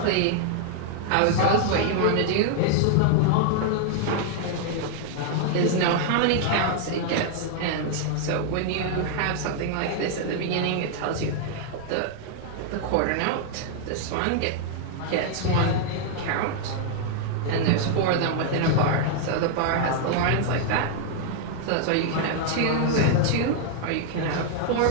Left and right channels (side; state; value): both; different; correlation -0.01